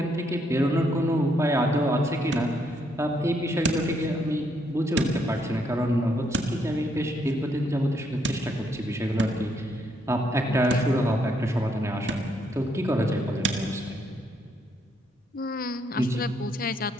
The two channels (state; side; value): normal; both; correlation 0.74